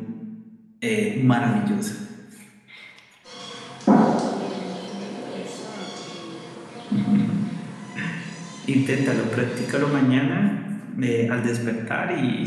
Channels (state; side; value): identical; both; correlation 1.00